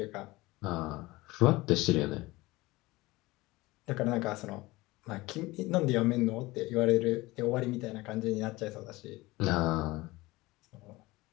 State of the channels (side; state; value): right; quieter; 20.8 dB